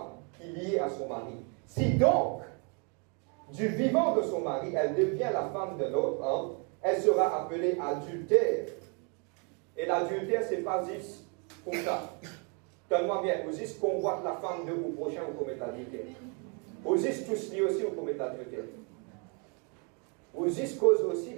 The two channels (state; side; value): quieter; left; 36.0 dB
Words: qui est liée à son mari. Si donc, du vivant de son mari, elle devient la femme d'un autre homme, elle sera appelée adultère. Et l'adultère, c'est pas juste comme ça. Donne-moi bien, vous juste convoite la femme de vos prochains ou commettre l'adultère. Vous juste tous liés aussi ou commettre l'adultère. Vous juste cause aussi